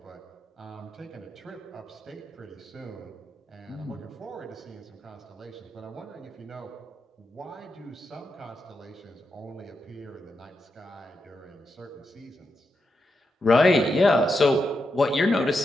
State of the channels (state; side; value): normal; both; correlation 0.86